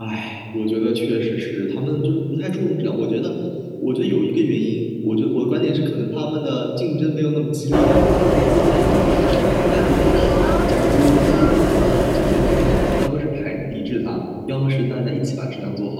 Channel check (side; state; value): both; identical; correlation 1.00